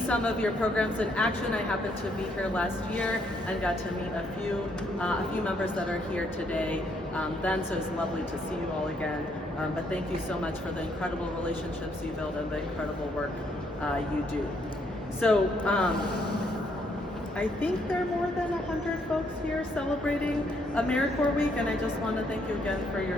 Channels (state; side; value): normal; both; correlation 0.72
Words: of your programs in action. I happened to be here last year and got to meet a few members that are here today. So it's lovely to see you all again. But thank you so much for the incredible relationships you build and the incredible work you do. So I think there are more than 100 folks here celebrating AmeriCorps Week, and I just want to thank you again for